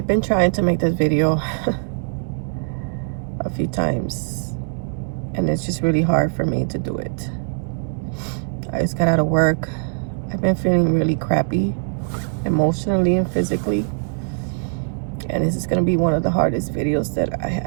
been trying to make this video a few times and it's just really hard for me to do it. I just got out of work. I've been feeling really crappy emotionally and physically, and this is gonna be one of the hardest videos that I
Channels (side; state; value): left; silent; digital silence